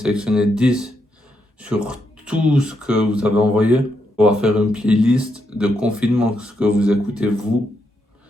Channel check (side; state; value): both; normal; correlation 0.80